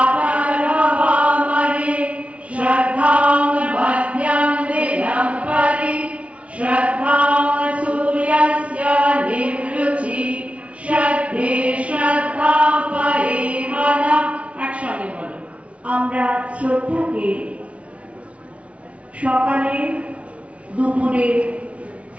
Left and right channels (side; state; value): left; late; 0.063 ms